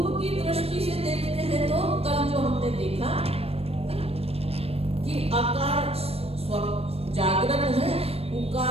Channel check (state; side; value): late; left; 0.28 ms